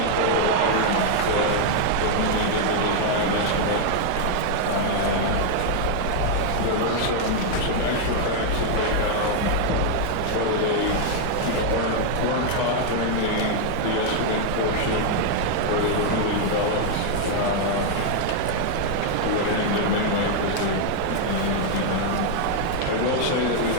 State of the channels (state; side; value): different; both; correlation 0.00